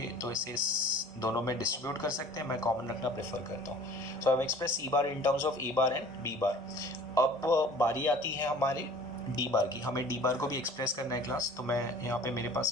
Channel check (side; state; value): both; normal; correlation 0.47